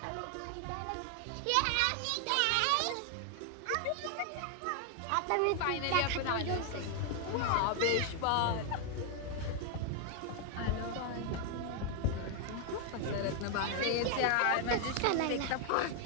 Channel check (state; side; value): different; both; correlation 0.00